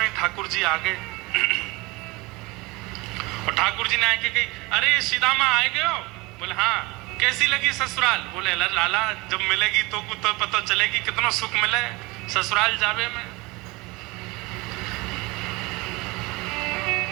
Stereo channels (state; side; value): quieter; left; 23.8 dB